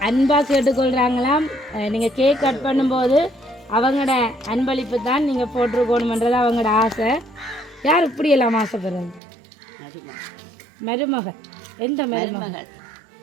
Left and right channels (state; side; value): drops out; left; at 9.2 s